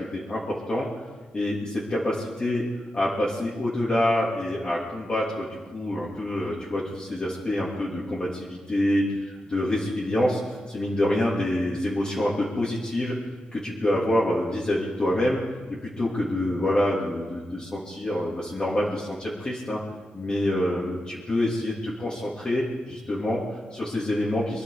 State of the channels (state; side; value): normal; both; correlation 0.89